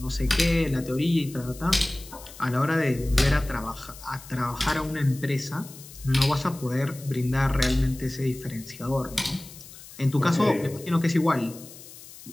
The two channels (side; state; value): left; noise; hiss, 17 dB below the sound